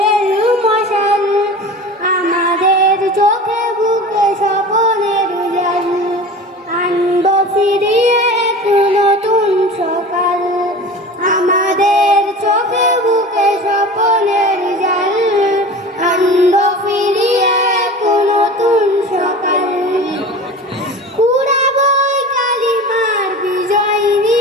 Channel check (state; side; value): normal; both; correlation 0.36